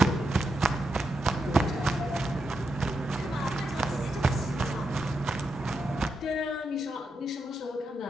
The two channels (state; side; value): normal; both; correlation 0.85